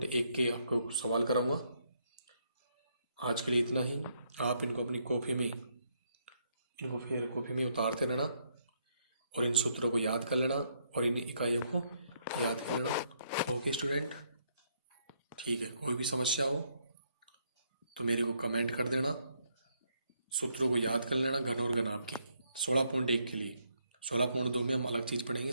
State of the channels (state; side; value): inverted; both; correlation -0.74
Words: के आपको सवाल कराऊंगा। आज के लिए इतना ही। आप इनको अपनी कॉपी में, इनको फिर कॉपी में उतारते रहना और इन सूत्रों को याद कर लेना और इन इकाइयों को याद कर लेना। ओके स्टूडेंट, ठीक है, कोई भी समस्या हो तो मेरे को कमेंट कर देना। सूत्रों को याद कर लेना घन और घनाभ की 16.1 के लिए। 16.2 में हम अलग चीज़ पढ़ेंगे,